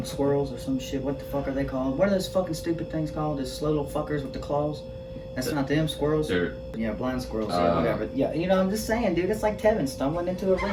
squirrels or some shit. What the fuck are they called? What are those fucking stupid things called? Those slow little fuckers with the claws? That's not them, squirrels? Yeah, blind squirrels, yeah, whatever. Yeah, you know, I'm just saying, dude, it's like Tevin stumbling into a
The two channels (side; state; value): both; identical; correlation 1.00